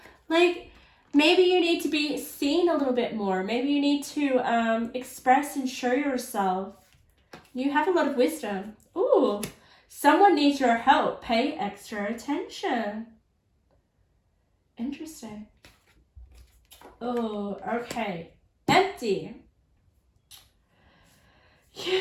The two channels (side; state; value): both; identical; correlation 1.00